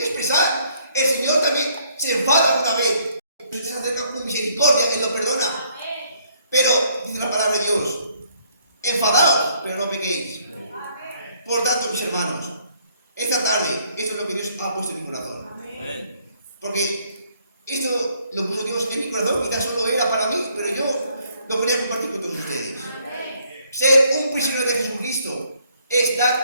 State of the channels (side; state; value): both; inverted; correlation -0.66